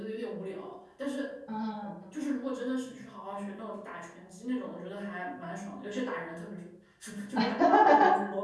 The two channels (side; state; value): both; identical; correlation 1.00